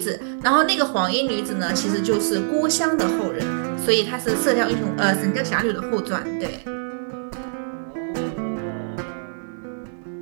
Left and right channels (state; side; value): silent; left; digital silence